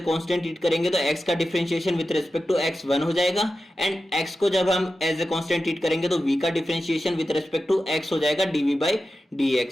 कांस्टेंट ट्रीट करेंगे तो x का differentiation with respect to x 1 हो जाएगा एंड x को जब हम एज ए कांस्टेंट ट्रीट करेंगे तो v का differentiation with respect to x हो जाएगा dv बाई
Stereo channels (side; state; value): both; normal; correlation 0.92